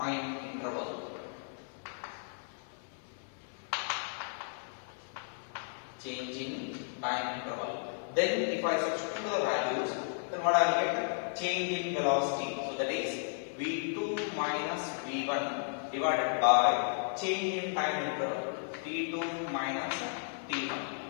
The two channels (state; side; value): silent; right; 55 dB below the other